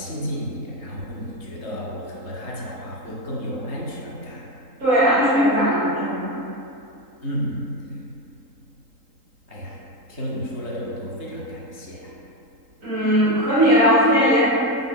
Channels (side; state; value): left; late; 3.8 ms